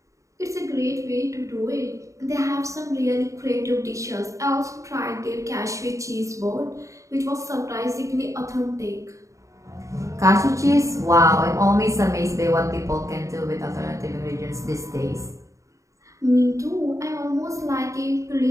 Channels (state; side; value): late; left; 0.15 ms